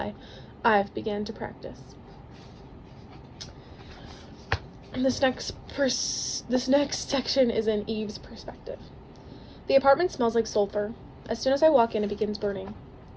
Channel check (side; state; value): both; identical; correlation 1.00